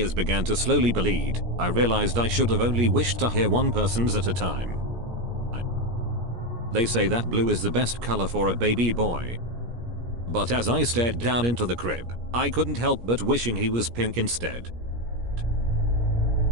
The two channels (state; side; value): late; left; 17 ms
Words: began to slowly bleed, I realized I should have only wished to hear one person's at a time. They say that blue is the best color for a baby boy. But as I stared down into the crib, I couldn't help but wishing he was pink instead.